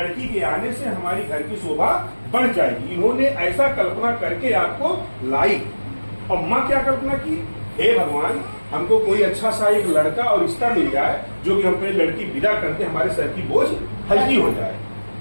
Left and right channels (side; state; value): both; inverted; correlation -1.00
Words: के आने से हमारी घर की शोभा बढ़ जाएगी। इन्होंने ऐसा कल्पना करके आपको लाई। और माँ क्या कल्पना की, हे भगवान हमको कोई अच्छा सा एक लड़का और रिश्ता मिल जाए जो कि हम अपनी लड़की विदा करते हमारे सर की बोझ हल्की हो जाए।